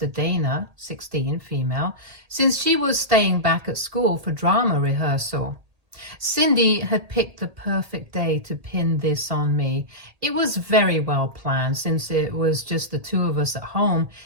Dana, 16 female, since she was staying back at school for drama rehearsal. Cindy had picked the perfect day to pin this on me. It was very well planned since it was just the two of us at home,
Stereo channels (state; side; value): late; left; 1.8 ms